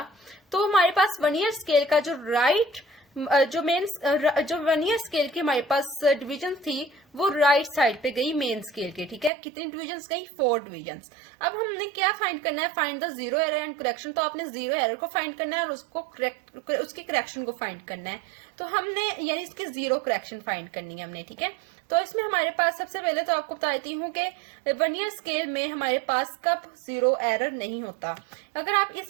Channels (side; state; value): left; drops out; at 9.3 s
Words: तो हमारे पास वर्नियर स्केल का जो जो वर्नियर स्केल की हमारे पास डिवीजन थी वो राइट साइड पे गई मेन स्केल के। ठीक है, कितनी डिवीजन्स गई? 4 डिवीजन्स। अब हमने क्या फाइंड करना है? Find the zero error and correction. तो आपने जीरो एरर को फाइंड करना है और उसकी करेक्शन को फाइंड करना है। तो हमने यानी इसकी जीरो करेक्शन फाइंड करनी है हमने। ठीक है, तो इसमें हमारे पास सबसे पहले तो आपको बताती हूँ कि वर्नियर स्केल में हमारे पास कब जीरो एरर नहीं होता। अगर आप